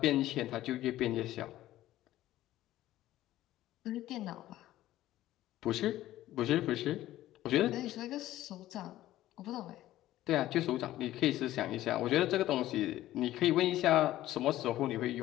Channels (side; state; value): right; quieter; 14.6 dB